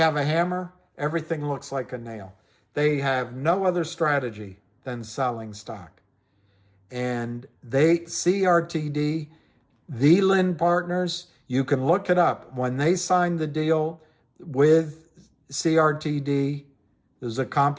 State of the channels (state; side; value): identical; both; correlation 1.00